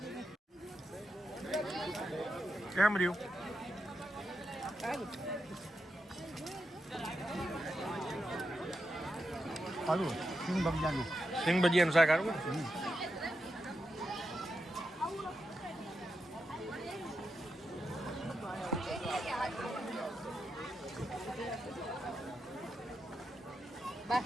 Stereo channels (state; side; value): normal; both; correlation 0.86